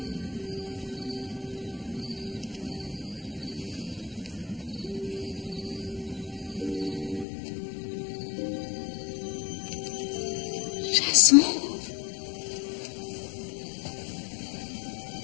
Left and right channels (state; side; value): drops out; right; at 7.2 s